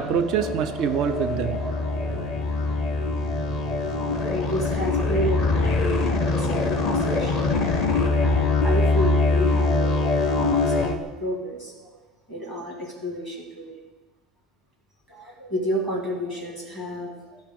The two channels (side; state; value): both; normal; correlation 0.47